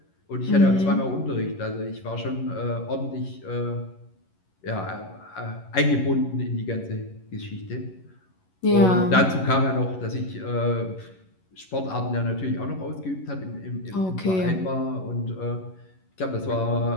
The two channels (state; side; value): late; right; 11 ms